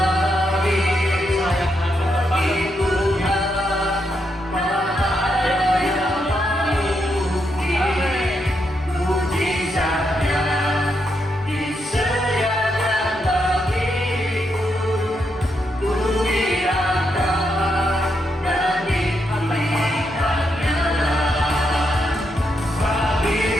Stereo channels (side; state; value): both; normal; correlation 0.81